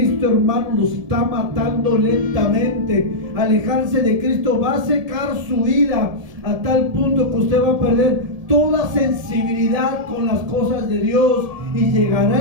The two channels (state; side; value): late; left; 1.7 ms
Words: hermano, nos está matando lentamente. Alejarse de Cristo va a secar su vida a tal punto que usted va a perder toda sensibilidad con las cosas de Dios, y